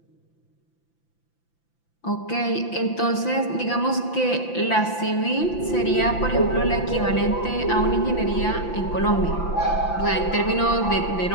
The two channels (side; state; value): right; late; 5.9 ms